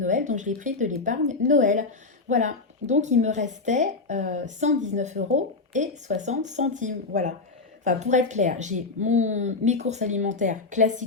Noël, donc je l'ai pris de l'épargne Noël. Voilà, donc il me restait 119,60 €. Voilà. Enfin, pour être clair, j'ai mes courses alimentaires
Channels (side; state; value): right; quieter; 3.9 dB